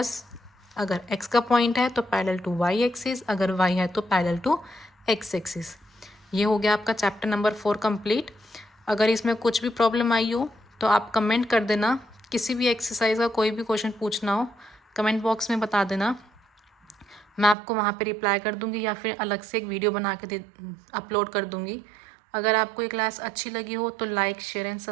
अगर x का पॉइंट है तो पैरेलल टू y एक्सिस, अगर y है तो पैरेलल टू x एक्सिस। ये हो गया आपका चैप्टर नंबर 4 कंप्लीट। अगर इसमें कुछ भी प्रॉब्लम आई हो तो आप कमेंट कर देना, किसी भी एक्सरसाइज का कोई भी क्वेश्चन पूछना हो कमेंट बॉक्स में बता देना, मैं आपको वहाँ पे रिप्लाई कर दूँगी या फिर अलग से एक वीडियो बना के अपलोड कर दूँगी। अगर आपको ये क्लास अच्छी लगी हो तो लाइक शेयर एंड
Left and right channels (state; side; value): drops out; left; at 17.6 s